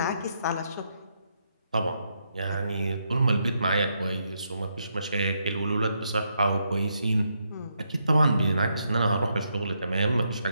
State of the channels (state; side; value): inverted; both; correlation -0.79